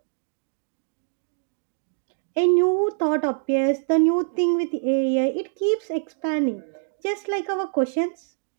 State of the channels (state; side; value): silent; left; digital silence